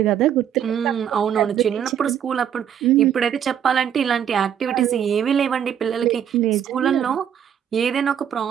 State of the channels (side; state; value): left; quieter; 9.2 dB